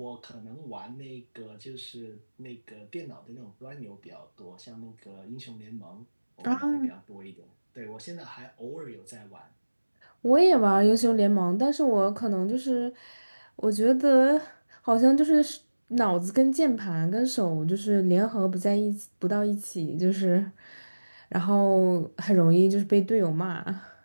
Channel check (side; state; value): both; inverted; correlation -1.00